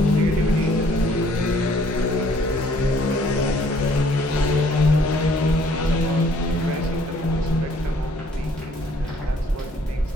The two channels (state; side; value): normal; both; correlation 0.61